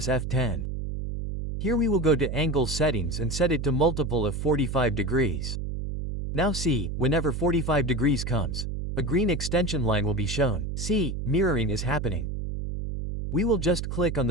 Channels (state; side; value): noise; right; hum, 4 dB below the sound